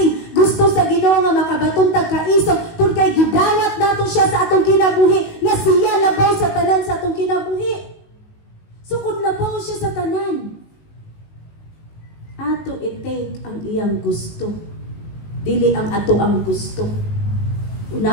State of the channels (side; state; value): right; late; 19 ms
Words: Gusto sa Ginoo nga makabaton tag kaisog kung kay gidawat nato siya sa atong kinabuhi nga siya labaw sa tanan sa atong kinabuhi. So kung labaw siya sa tanan, ato i-take ang iyang gusto. Dili ang ato ang gusto.